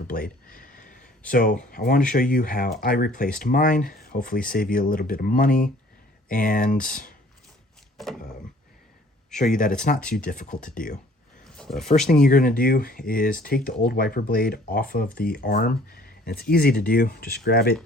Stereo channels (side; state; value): both; normal; correlation 0.55